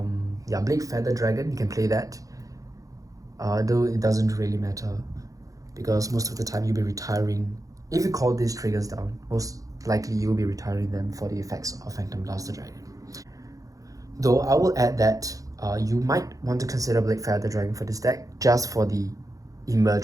yeah, Blade Feather Dragon, you can play that. Though it doesn't really matter, because most of the time you'll be retiring. If you call these triggers down, most likely you'll be retiring them for the effects of Phantom Blaster Dragon. Though I will add that you might want to consider Blade Feather Dragon for this deck just for the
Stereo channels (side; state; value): left; late; 0.17 ms